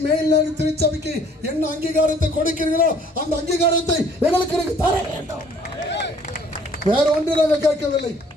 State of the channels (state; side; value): normal; both; correlation 0.57